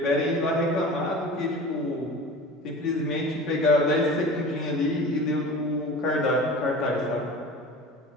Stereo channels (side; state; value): both; normal; correlation 0.37